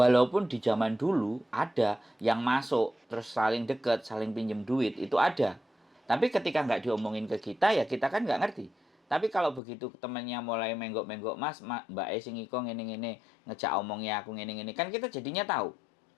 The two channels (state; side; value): drops out; right; at 9.6 s